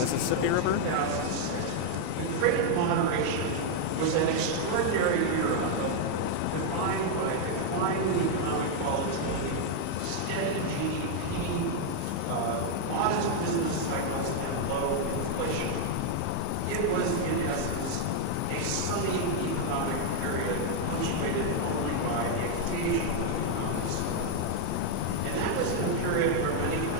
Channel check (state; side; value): different; both; correlation 0.00